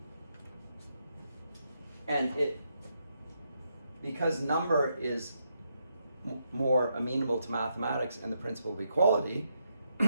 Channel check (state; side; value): inverted; both; correlation -0.80